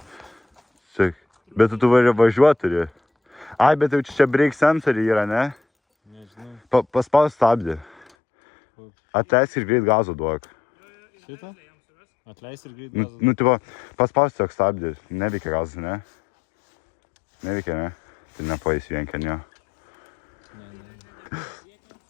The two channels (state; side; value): drops out; right; at 8.1 s